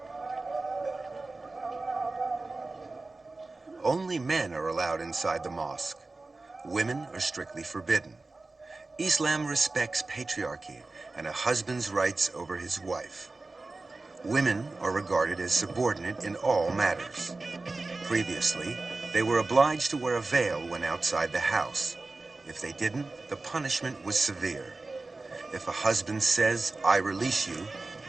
Only men are allowed inside the mosque. Women are strictly forbidden. Islam respects patriarchy and a husband's rights over his wife. Women are regarded as subordinate in all matters. Previously, they were obliged to wear a veil when outside the house. If they didn't, the punishment was severe. If a husband says, "I release you,"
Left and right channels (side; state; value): left; quieter; 3.4 dB